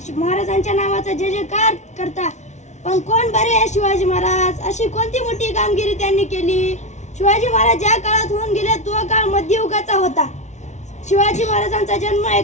महाराजांच्या नावाचा जय जयकार करता. पण कोण बरे आहे शिवाजी महाराज? अशी कोणती मोठी कामगिरी त्यांनी केली? शिवाजी महाराज ज्या काळात होऊन गेले तो काळ मध्ययुगाचा होता. शिवाजी महाराजांचा जन्म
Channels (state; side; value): late; right; 0.33 ms